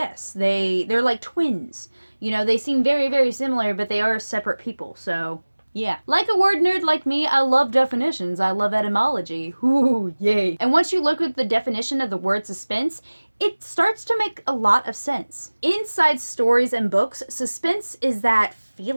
they're like twins. You know, they seem very, very similar, but they are separate people. So yeah. Like a word nerd like me, I love definitions. I love etymology. Ooh, yay. And once you look at the definition of the word suspense, it starts to make a lot of sense. Inside stories and books, suspense is that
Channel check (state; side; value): inverted; both; correlation -1.00